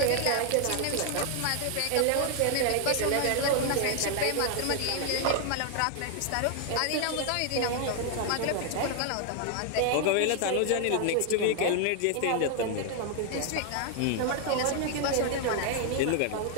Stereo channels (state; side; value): different; both; correlation 0.00